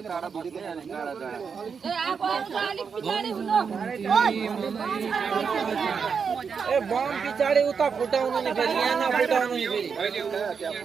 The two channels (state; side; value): quieter; left; 6.1 dB